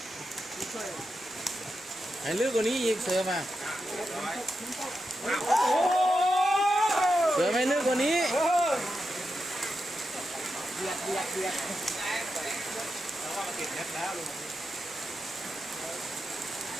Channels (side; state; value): both; normal; correlation 0.88